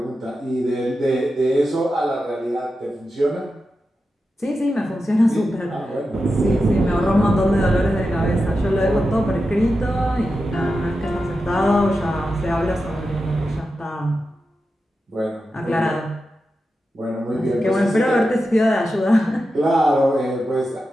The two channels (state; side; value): normal; both; correlation 0.90